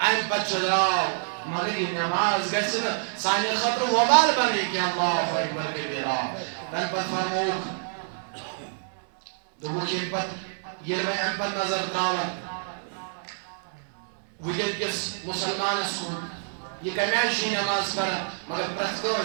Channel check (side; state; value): left; silent; digital silence